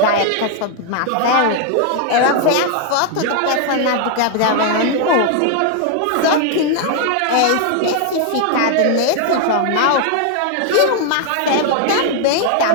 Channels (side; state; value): both; different; correlation 0.00